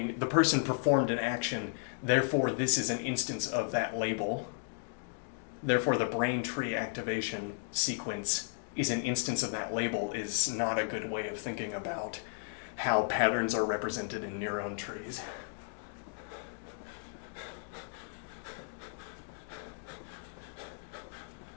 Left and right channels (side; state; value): right; silent; digital silence